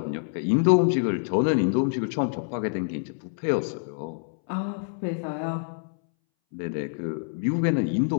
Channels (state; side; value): silent; right; 61 dB below the other